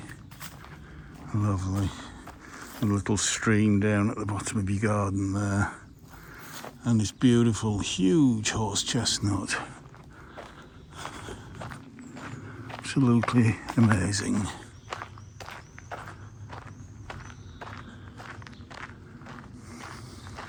Lovely. A little stream down at the bottom of your garden there. And this beautiful, huge horse chestnut. Absolutely amazing.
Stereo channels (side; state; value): both; identical; correlation 1.00